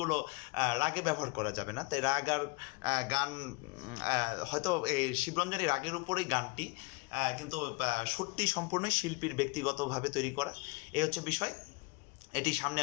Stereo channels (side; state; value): right; quieter; 28.0 dB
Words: রাগে ব্যবহার করা যাবে না। তাই রাগ আর গান, হয়তো এই শিবরঞ্জনী রাগের উপরেই গানটি, কিন্তু সুরটি সম্পূর্ণই শিল্পীর ব্যক্তিগতভাবে তৈরি করা। এই হচ্ছে বিষয়। এটি সামনে